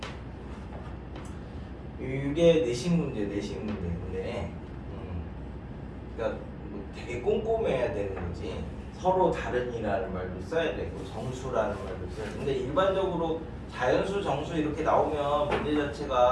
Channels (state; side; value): identical; both; correlation 1.00